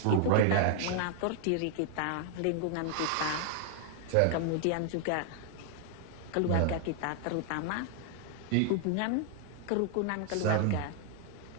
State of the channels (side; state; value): both; different; correlation 0.00